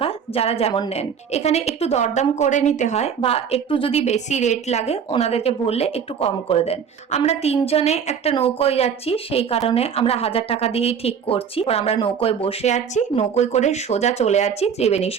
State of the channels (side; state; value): left; quieter; 7.2 dB